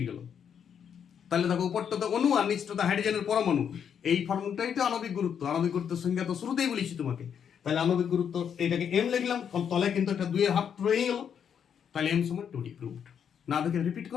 গেল। তাহলে দেখো উপরটা তো অণু আর নিচটা তো হাইড্রোজেনের পরমাণু, এই ফর্মটাই তো আণবিক গুরুত্ব। আণবিক গুরুত্বের সংজ্ঞা তো শুরুতেই বলেছি তোমাকে। তাহলে আণবিক গুরুত্ব এইটাকে এম লিখলাম, তলে কিন্তু একটা 2 এর হাফ রয়ে গেল, তাহলে এম সমান 2D, প্রুভড। না দেখে রিপিট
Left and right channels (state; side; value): quieter; right; 8.0 dB